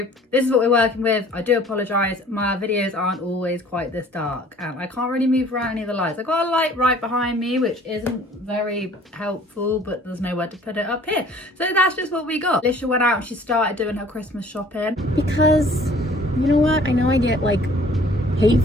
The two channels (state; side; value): normal; both; correlation 0.53